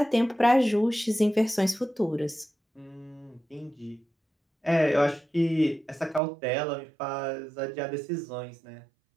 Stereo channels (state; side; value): drops out; left; at 6.2 s